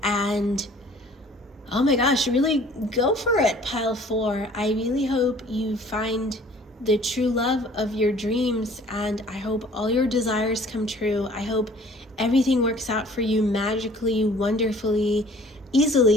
and oh my gosh, really go for it, Pile 4. I really hope you find the true love of your dreams, and I hope all your desires come true. I hope everything works out for you magically, wonderfully,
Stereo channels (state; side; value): normal; both; correlation 0.52